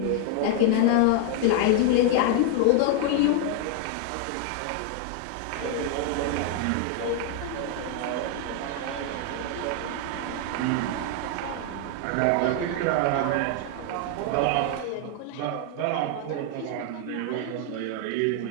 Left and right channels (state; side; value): different; both; correlation 0.00